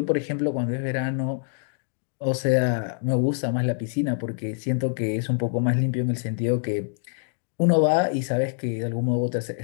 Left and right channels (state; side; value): silent; right; digital silence